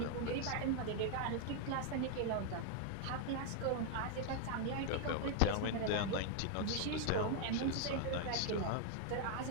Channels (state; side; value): different; both; correlation 0.00